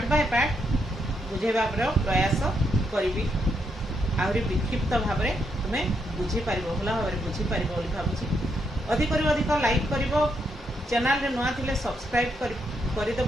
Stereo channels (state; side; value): normal; both; correlation 0.78